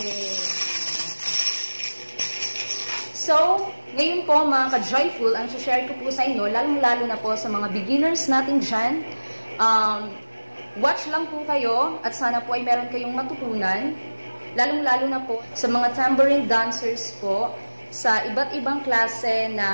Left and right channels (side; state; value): both; inverted; correlation -1.00